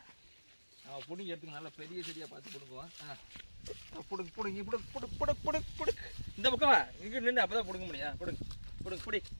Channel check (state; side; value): inverted; both; correlation -1.00